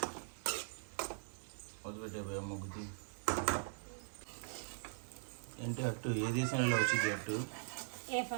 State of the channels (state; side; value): silent; left; 50 dB below the other